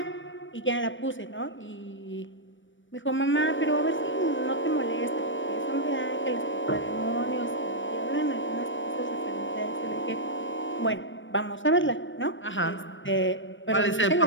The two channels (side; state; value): right; late; 0.56 ms